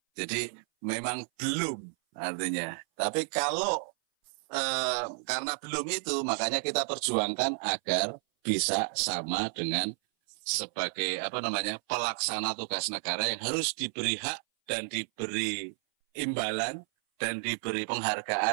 Jadi memang belum artinya. Tapi kalau karena belum itu, makanya kita perjuangkan agar bisa sama dengan sebagai pelaksana tugas negara yang harus diberi hak dan diberi imbalan dan diberi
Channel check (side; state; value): left; silent; 57 dB below the other